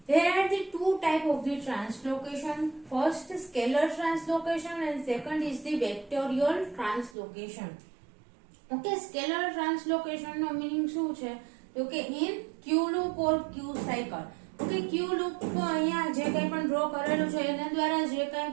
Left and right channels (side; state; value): left; drops out; at 7.1 s